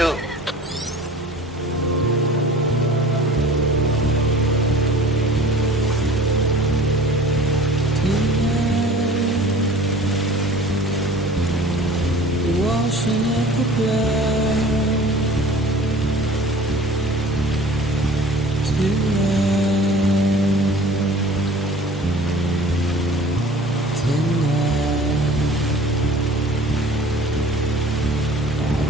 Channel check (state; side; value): normal; both; correlation 0.46